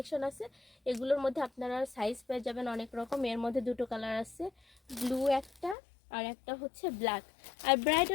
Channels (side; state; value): right; drops out; at 5.8 s